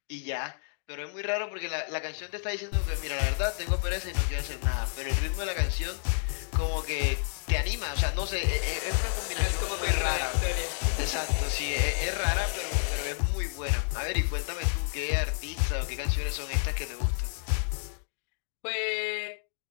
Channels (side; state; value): right; silent; digital silence